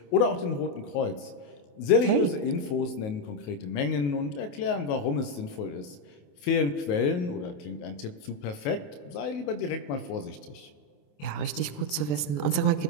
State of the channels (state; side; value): late; right; 27 ms